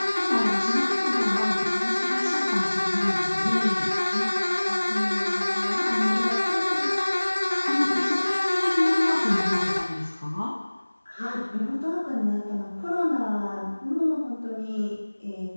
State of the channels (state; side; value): inverted; both; correlation -1.00